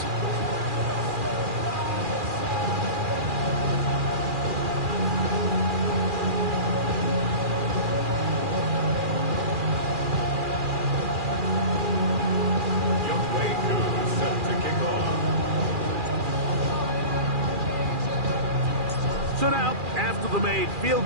So now, after the made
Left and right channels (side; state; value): left; late; 2.4 ms